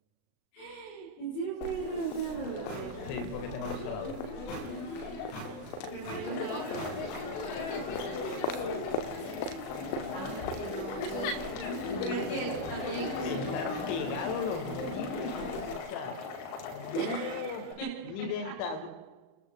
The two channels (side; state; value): right; late; 36 ms